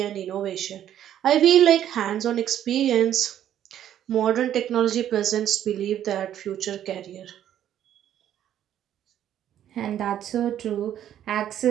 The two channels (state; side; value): quieter; left; 10.9 dB